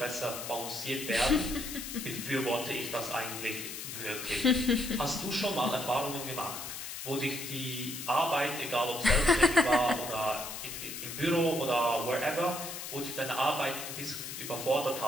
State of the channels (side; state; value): left; noise; hiss, 8 dB below the sound